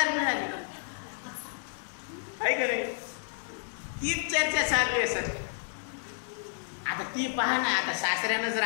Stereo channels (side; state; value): right; silent; 57 dB below the other